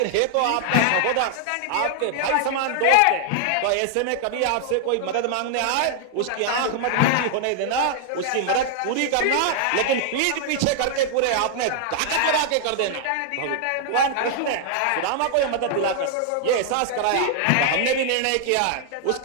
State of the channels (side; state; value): both; different; correlation -0.01